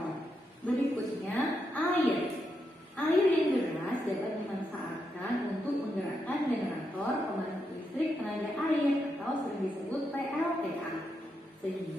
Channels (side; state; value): both; normal; correlation 0.83